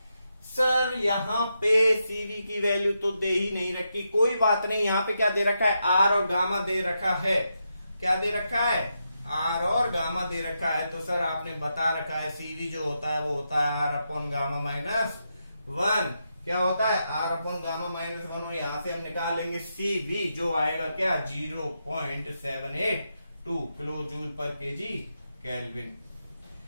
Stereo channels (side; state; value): both; inverted; correlation -0.84